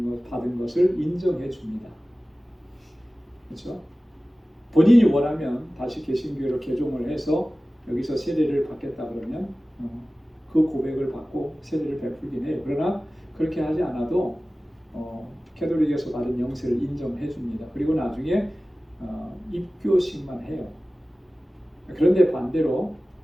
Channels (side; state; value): both; normal; correlation 0.97